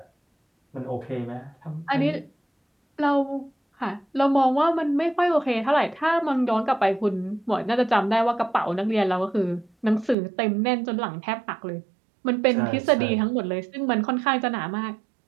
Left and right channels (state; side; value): drops out; left; at 10.2 s